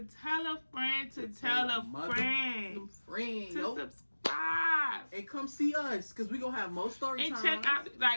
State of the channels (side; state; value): both; inverted; correlation -1.00